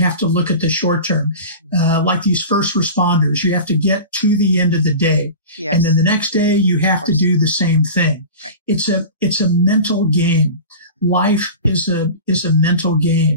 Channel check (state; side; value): inverted; both; correlation -0.33